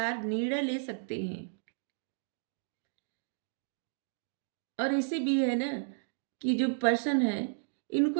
निर्णय ले सकते हैं। और ऐसे भी है ना कि जो पर्सन है, इनको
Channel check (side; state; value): left; silent; digital silence